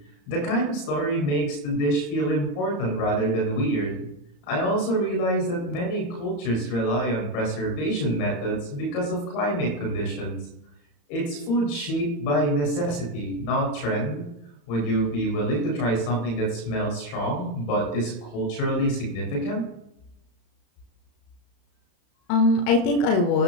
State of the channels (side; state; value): right; late; 34 ms